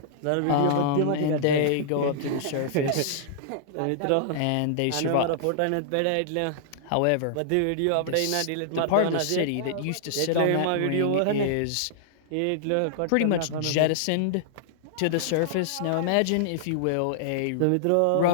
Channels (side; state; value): both; different; correlation -0.01